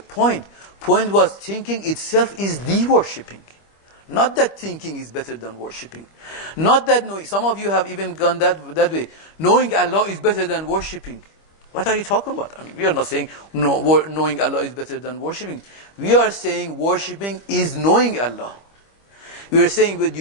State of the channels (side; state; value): right; late; 25 ms